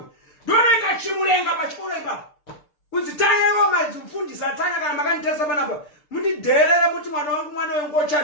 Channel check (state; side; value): late; right; 6.7 ms